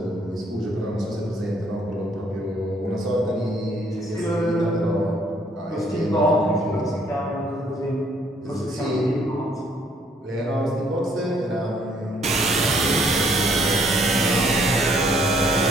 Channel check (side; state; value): both; normal; correlation 0.65